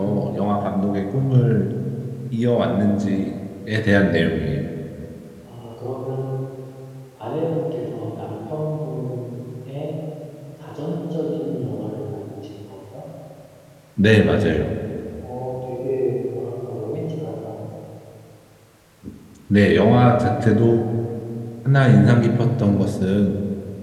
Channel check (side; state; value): both; identical; correlation 1.00